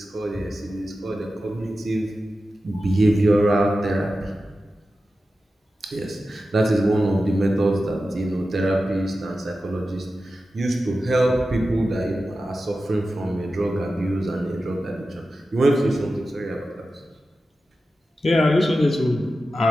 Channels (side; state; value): both; normal; correlation 0.93